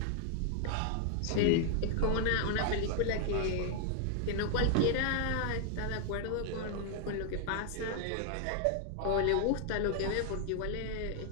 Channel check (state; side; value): different; both; correlation 0.00